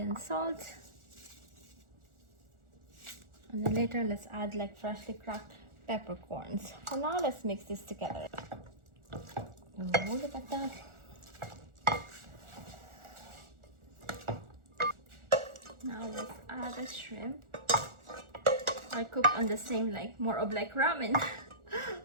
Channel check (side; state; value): left; late; 1.4 ms